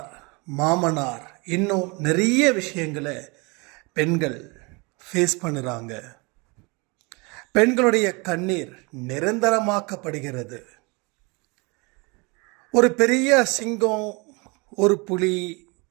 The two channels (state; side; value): quieter; left; 28.5 dB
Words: மாமனார், இன்னும் நிறைய விஷயங்களை பெண்கள் ஃபேஸ் பண்ணுறாங்க. பெண்களுடைய கண்ணீர் நிரந்தரமாக்கப்படுகிறது. ஒரு பெரிய சிங்கம், ஒரு புலி,